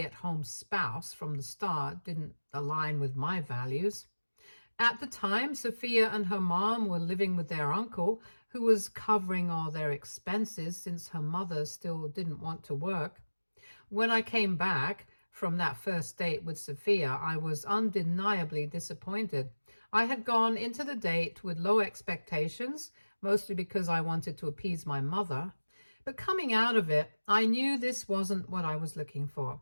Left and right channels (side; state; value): both; inverted; correlation -1.00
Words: spouse from the start didn't align with my values. At the time, Sophia and her mom were living with their uncle, who was covering all their expenses since her mother still didn't want to work. When I came back from that first date with Sophia, I was undeniably disappointed. I had gone into the date with low expectations, mostly because I wanted to appease my mother. But coming out of it, I knew this wasn't what I was looking for.